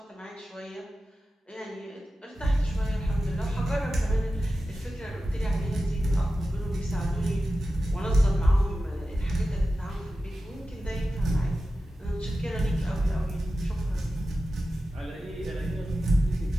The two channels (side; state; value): both; normal; correlation 0.93